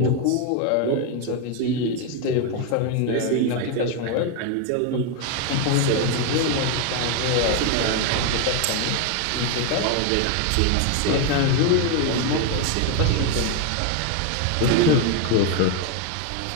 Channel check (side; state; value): both; different; correlation 0.01